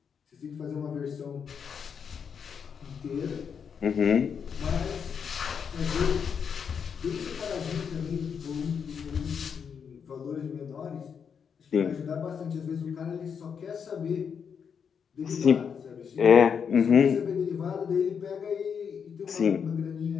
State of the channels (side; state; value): right; quieter; 6.9 dB